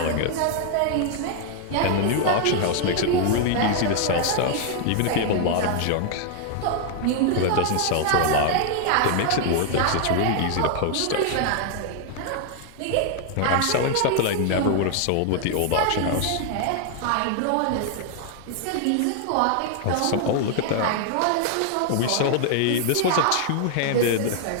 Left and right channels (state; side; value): different; both; correlation 0.00